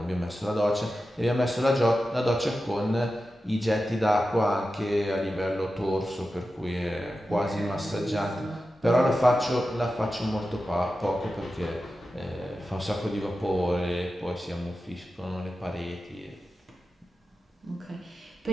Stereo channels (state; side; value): normal; both; correlation 0.92